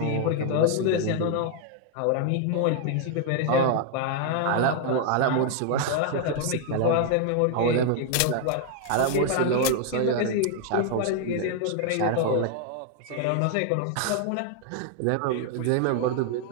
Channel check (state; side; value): different; both; correlation 0.00